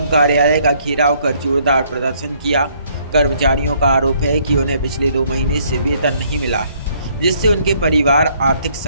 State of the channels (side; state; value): both; inverted; correlation -0.66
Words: कार्यालय का घेराव कर जोरदार प्रदर्शन किया। कर्मचारियों का आरोप है कि उन्हें पिछले 2 महीने से वेतन नहीं मिला है, जिससे उनके परिवार आर्थिक